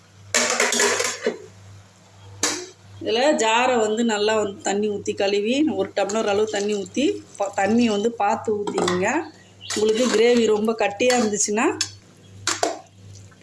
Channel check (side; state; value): both; identical; correlation 1.00